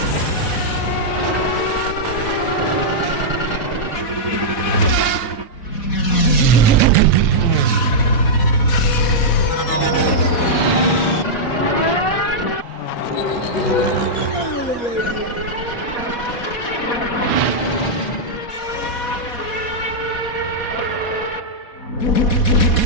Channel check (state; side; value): late; right; 4.1 ms